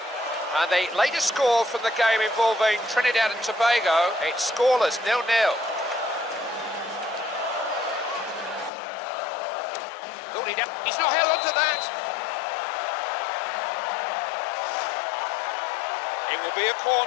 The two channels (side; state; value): right; drops out; at 8.7 s